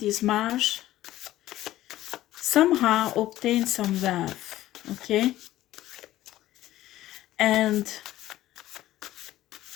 mage somehow obtained some wealth, okay? And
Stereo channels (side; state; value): right; quieter; 14.7 dB